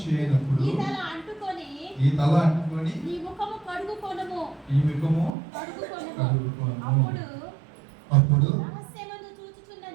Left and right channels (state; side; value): drops out; left; at 5.3 s